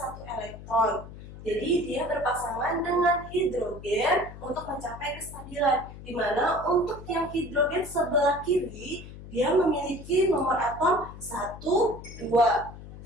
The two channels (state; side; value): noise; left; hum, 14 dB below the sound